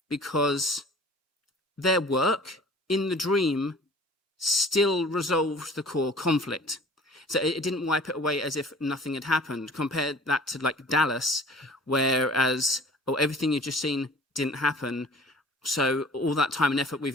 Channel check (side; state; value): both; normal; correlation 0.48